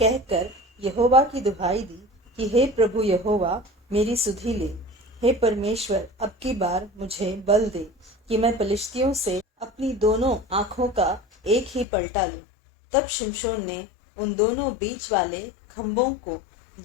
यहोवा की दुहाई दी कि हे प्रभु यहोवा, मेरी सुधि ले। हे परमेश्वर, अब की बार मुझे बल दे कि मैं पलिश्तियों से अपनी दोनों आंखों का एक ही पलटा लूं। तब शिमशोन ने उन दोनों बीच वाले खंभों को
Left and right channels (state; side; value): drops out; right; at 11.9 s